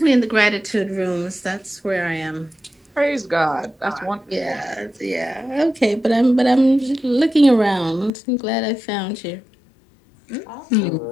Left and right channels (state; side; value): drops out; right; at 8.1 s